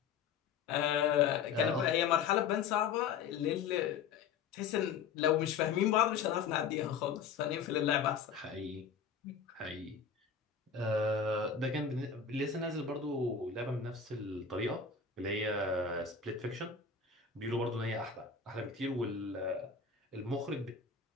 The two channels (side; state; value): right; quieter; 6.3 dB